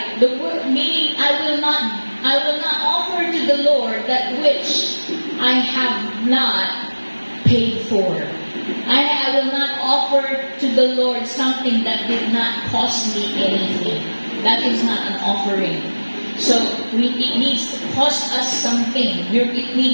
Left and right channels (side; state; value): both; inverted; correlation -1.00